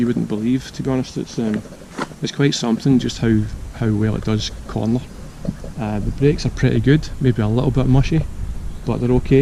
wouldn't believe. To be honest, it's quite something just how well it does corner. The brakes are pretty good, maybe a little bit mushy, but they're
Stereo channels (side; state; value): both; identical; correlation 1.00